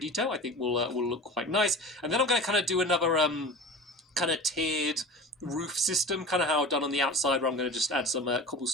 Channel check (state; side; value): normal; both; correlation 0.35